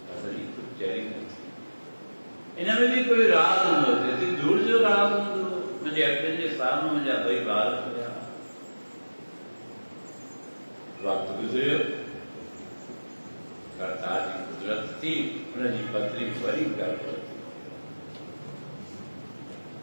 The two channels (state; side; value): inverted; both; correlation -1.00